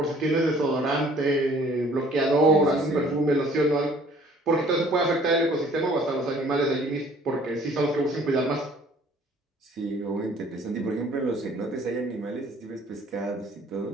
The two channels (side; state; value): both; normal; correlation 0.56